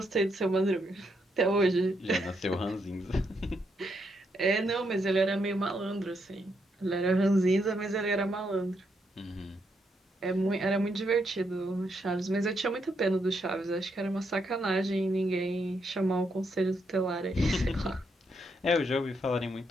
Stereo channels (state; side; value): normal; both; correlation 0.78